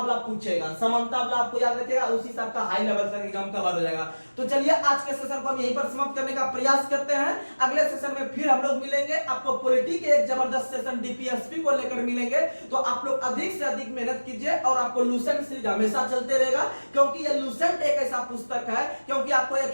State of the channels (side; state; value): both; inverted; correlation -1.00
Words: पूछेगा, समानता वाला आपको याद रखिएगा, उसी से आपका हाई लेवल तक एग्जाम कवर हो जाएगा। तो चलिए आज के सेशन को हम यहीं पर समाप्त करने का प्रयास करते हैं। अगले सेशन में फिर हम लोग मिलेंगे, आपको पॉलिटी के एक जबरदस्त सेशन डीपीएसपी को लेकर मिलेंगे। तो आप लोग अधिक से अधिक मेहनत कीजिए और आपको लूसेंट सीरीज हमेशा चलते रहेगा, क्योंकि ये लूसेंट एक ऐसा पुस्तक है, क्योंकि आपको